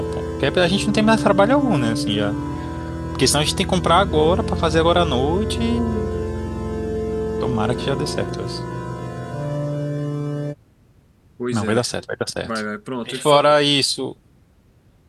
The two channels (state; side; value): identical; both; correlation 1.00